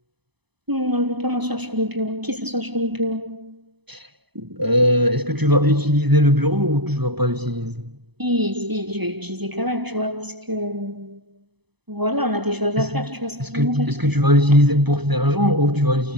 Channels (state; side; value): late; left; 0.99 ms